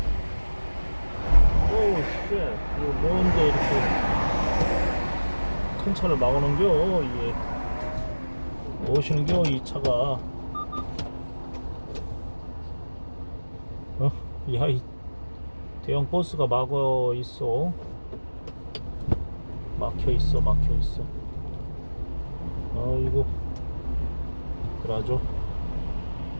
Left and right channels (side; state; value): both; inverted; correlation -1.00